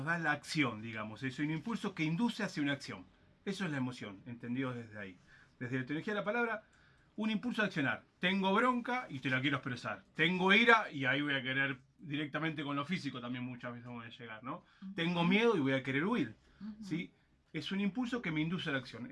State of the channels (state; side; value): identical; both; correlation 1.00